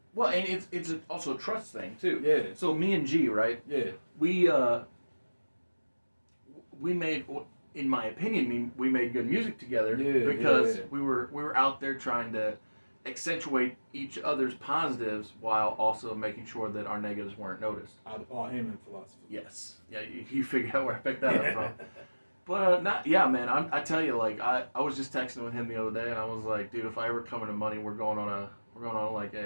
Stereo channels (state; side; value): inverted; both; correlation -1.00